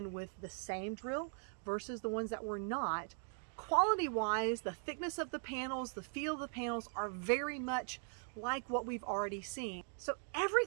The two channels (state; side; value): silent; left; 51 dB below the other